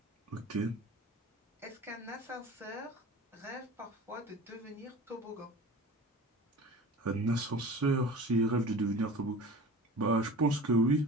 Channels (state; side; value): normal; both; correlation 0.39